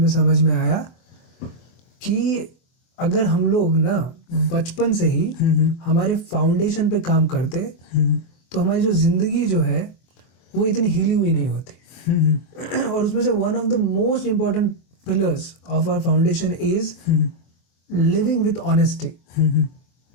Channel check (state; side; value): late; right; 24 ms